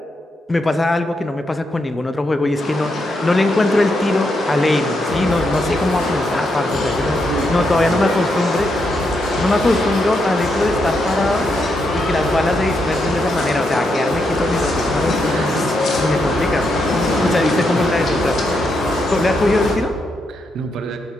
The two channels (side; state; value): both; normal; correlation 0.81